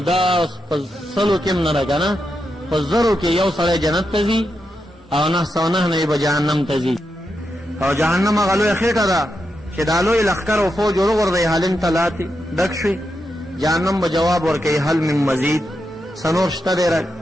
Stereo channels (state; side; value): normal; both; correlation 0.86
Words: په سلو کې هم نه ده که نه، په زرو کې یو سړی جنت ته ځي او 909 نه به جهنم ته ځي. او جهنم هغه لویه خېټه ده چې دا لوی لښکر او فوج وروغورځوي هالند ته لاتې ډک شوي. جهنم به جواب ورکوي هل من مزید، سنور شته دی